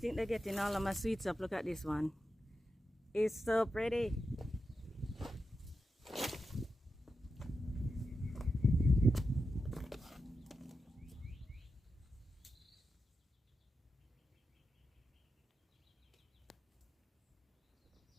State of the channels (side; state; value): both; normal; correlation 0.89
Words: they're getting all of my sweets up. Look at this one. It's so pretty.